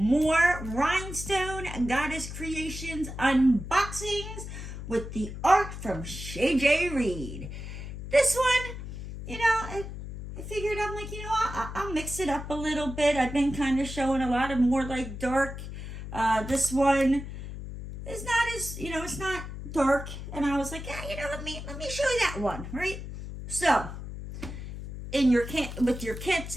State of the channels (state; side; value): noise; left; hum, 9 dB below the sound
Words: Rhinestone Goddess Creations unboxings with the art from Shay Jay-Reed. This one, I figured I'm like, I'll mix it up a little bit. I've been kind of showing a lot of more like dark. This one is not as, it's not dark. And I was like, let me show you that one, right? So, in your with your